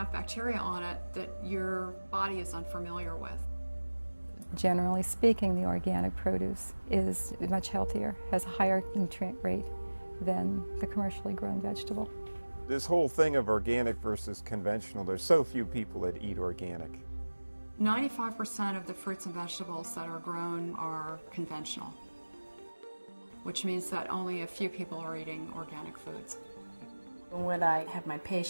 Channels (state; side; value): inverted; both; correlation -1.00